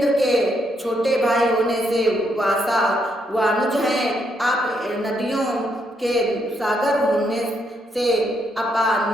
के छोटे भाई होने से वासा वानुज हैं। आप नदियों के सागर होने से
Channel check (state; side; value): normal; both; correlation 0.76